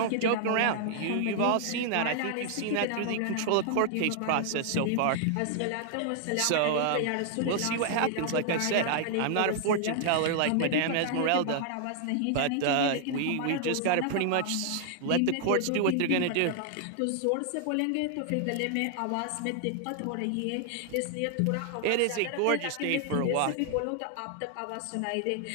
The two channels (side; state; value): both; different; correlation 0.00